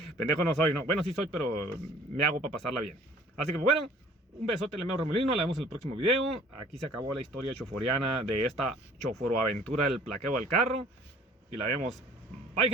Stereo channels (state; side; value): normal; both; correlation 0.53